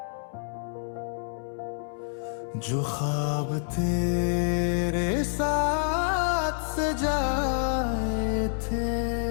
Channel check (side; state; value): right; silent; 60 dB below the other